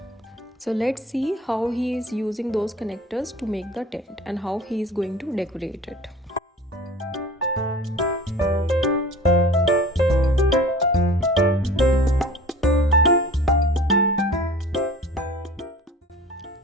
So let's see how he is using those connectors to make the tent and how he is going to decorate it.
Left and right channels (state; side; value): normal; both; correlation 0.42